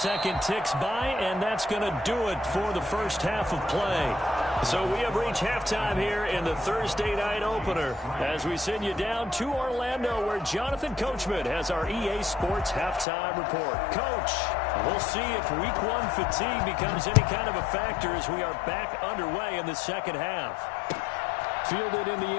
ticks by, and that's going to do it for the 1st half of play. So we have reached halftime here in the Thursday night opener as we send you down to Orlando where Jonathan Coachman has our EA Sports halftime report. Coach, we'll see if week 1 fatigue becomes any kind of a factor as we are back underway in the 2nd half. Fielded in the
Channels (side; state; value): right; drops out; at 13.1 s